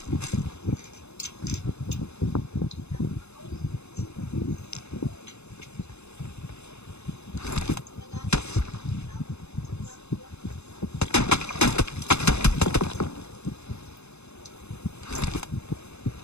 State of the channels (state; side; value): late; right; 0.81 ms